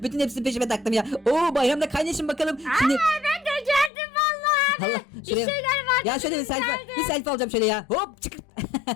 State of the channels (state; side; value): drops out; right; at 3.9 s